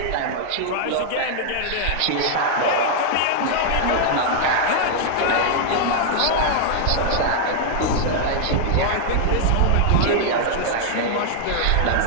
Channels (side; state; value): both; different; correlation -0.01